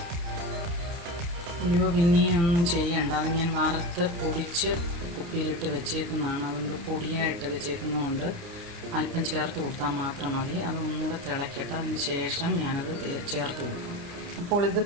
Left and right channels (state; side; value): late; left; 29 ms